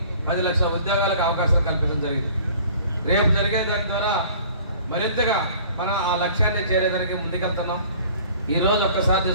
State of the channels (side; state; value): both; inverted; correlation -0.50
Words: 10 లక్షల ఉద్యోగాలకు అవకాశాలు కల్పించడం జరిగింది. రేపు జరిగే దాని ద్వారా మరింతగా మనం ఆ లక్ష్యాన్ని చేరేదానికి ముందుకెళ్తున్నాం. ఈరోజు ఒక్కసారి